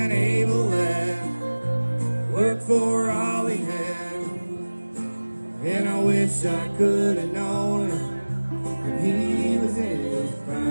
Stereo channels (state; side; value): inverted; both; correlation -1.00